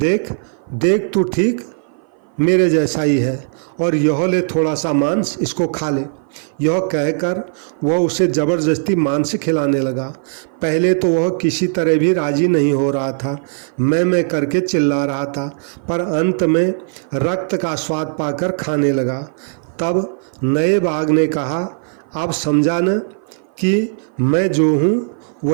देख तू ठीक मेरे जैसा ही है और यह ले थोड़ा सा मांस, इसको खा ले। यह कहकर वह उसे ज़बरदस्ती मांस खिलाने लगा। पहले तो वह किसी तरह भी राजी नहीं हो रहा था, मैं करके चिल्ला रहा था, पर अंत में रक्त का स्वाद पाकर खाने लगा। तब नए बाघ ने कहा, अब समझा न कि मैं जो हूँ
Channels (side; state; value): left; silent; 56 dB below the other